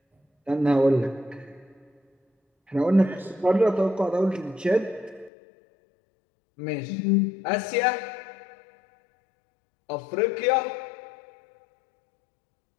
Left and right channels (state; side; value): drops out; right; at 5.3 s